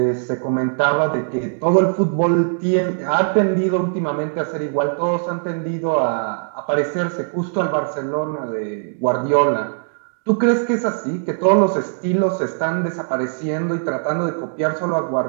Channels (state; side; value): silent; left; digital silence